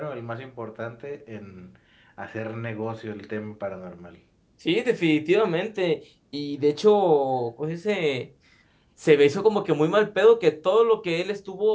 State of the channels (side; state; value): both; identical; correlation 1.00